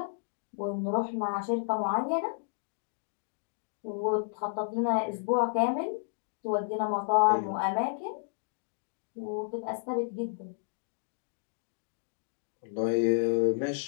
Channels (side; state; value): right; silent; digital silence